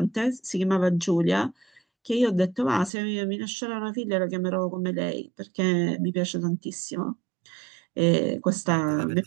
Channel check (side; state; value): left; drops out; at 2.9 s